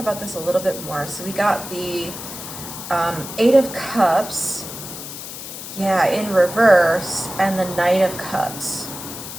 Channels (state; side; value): noise; left; hiss, 10 dB below the sound